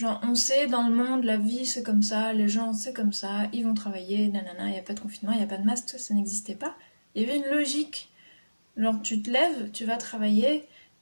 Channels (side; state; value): both; inverted; correlation -1.00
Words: on sait dans le monde, la vie c'est comme ça, les gens c'est comme ça, ils vont travailler, nanana, il n'y a pas de confinement, il n'y a pas de masque, ça n'existait pas. Il y avait une logique. Genre, tu te lèves, tu vas travailler,